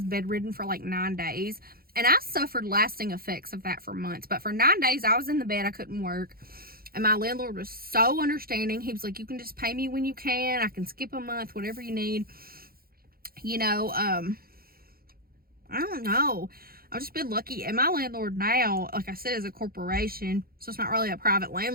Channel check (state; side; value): late; left; 0.43 ms